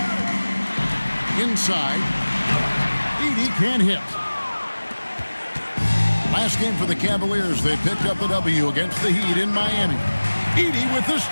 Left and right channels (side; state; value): both; inverted; correlation -1.00